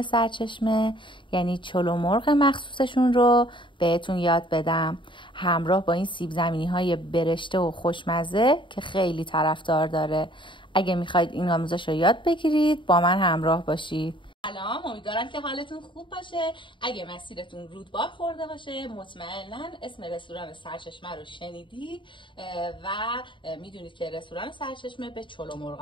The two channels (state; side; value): late; right; 0.24 ms